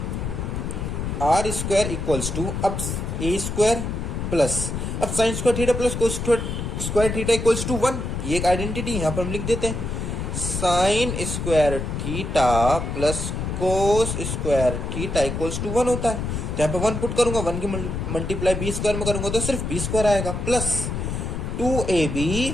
आर स्क्वायर इक्वल्स टू, अब ए स्क्वायर प्लस, अब sine square theta plus cos square theta equals to 1। ये एक आइडेंटिटी यहाँ पर हम लिख देते हैं, sine square theta plus cos square theta equals to 1 होता है। तो यहाँ पे 1 पुट करूंगा, 1 की मल्टीप्लाई बी स्क्वायर में करूंगा तो सिर्फ बी स्क्वायर आएगा plus 2ab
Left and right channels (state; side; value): noise; left; rumble, 3 dB below the sound